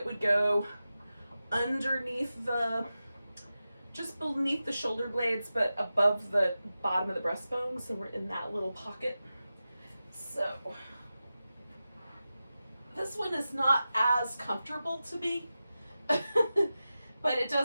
would go underneath just beneath the shoulder blades, but above the bottom of the breastbone. So we're in that little pocket. So this one is not as comfortable to me, but it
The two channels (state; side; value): inverted; both; correlation -0.93